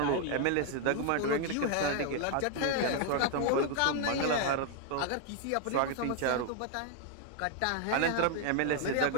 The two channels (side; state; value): both; different; correlation 0.00